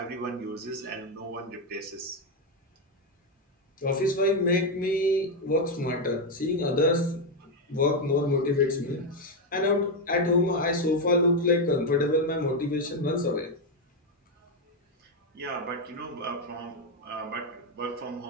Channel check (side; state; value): both; normal; correlation 0.05